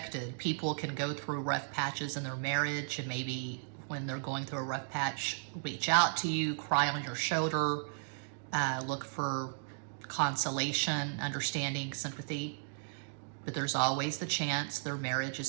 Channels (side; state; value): left; silent; digital silence